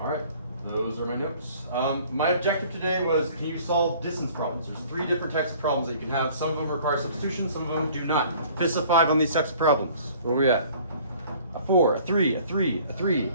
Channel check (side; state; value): both; inverted; correlation -0.52